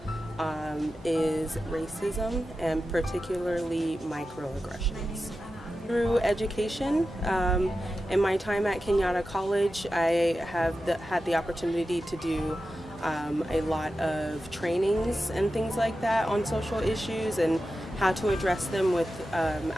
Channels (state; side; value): normal; both; correlation 0.92